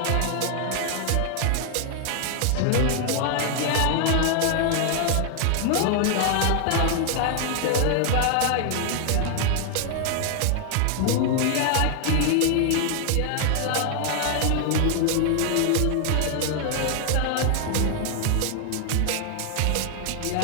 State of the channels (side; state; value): both; different; correlation 0.00